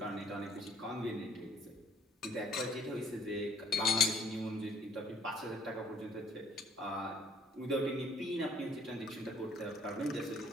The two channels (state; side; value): normal; both; correlation 0.61